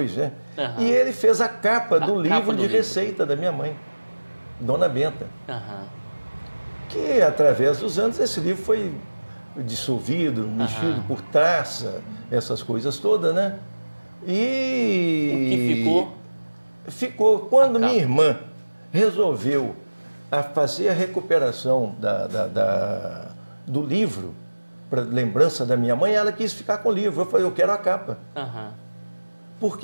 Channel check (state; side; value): inverted; both; correlation -1.00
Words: né? E ele fez a capa do livro de receita da minha mãe, Dona Benta. Que, através dos anos, esse livro foi dissolvido, mexido por traça, essas coisas todas, né? E o que ficou? Ficou. Quando minha irmã resolveu fazer a recuperação do livro, para lembrança da minha mãe, ela quis ficar com o livro. Eu falei: eu quero a capa.